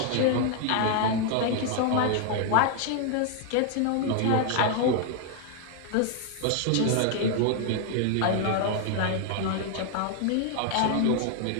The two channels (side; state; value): both; different; correlation 0.00